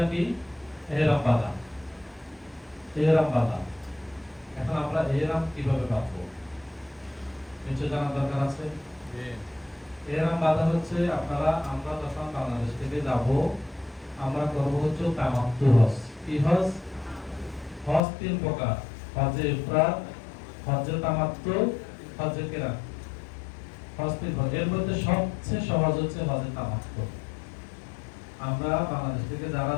কি? এহরাম বাঁধা। এহরাম বাঁধা। এখন আমরা এহরাম কিভাবে বাঁধবো নিশ্চয় জানার দরকার আছে। এহরাম বাঁধা হচ্ছে আমরা যখন বাংলাদেশ থেকে যাব, আমরা করব হচ্ছে তামাত্তু হজ। কি হজ? হজ 3 প্রকার: হজে ইফরাদ, হজে তামাত্তু, হজে কিরান। হজ 3 প্রকার। এর মধ্যে সবচেয়ে সহজ হচ্ছে হজে তামাত্তু। আমরা বাংলাদেশ থেকে যারা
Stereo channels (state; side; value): drops out; right; at 18.0 s